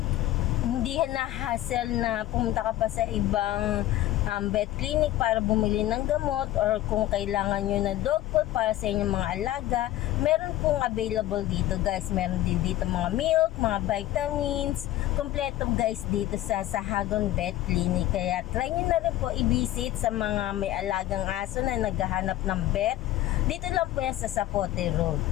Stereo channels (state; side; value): quieter; right; 14.6 dB